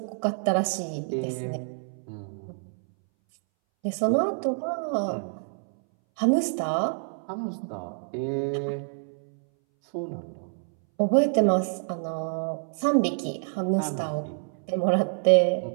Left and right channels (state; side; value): silent; left; 60 dB below the other